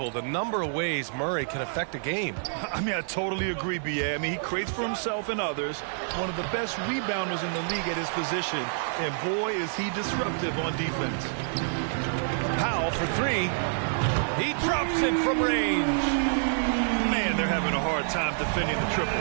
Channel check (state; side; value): silent; left; digital silence